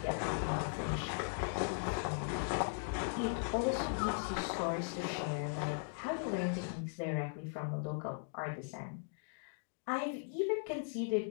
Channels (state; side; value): silent; right; digital silence